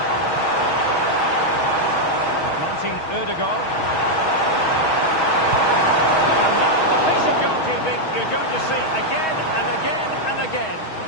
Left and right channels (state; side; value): late; right; 6.3 ms